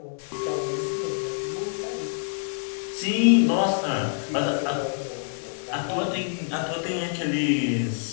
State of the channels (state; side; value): silent; right; 61 dB below the other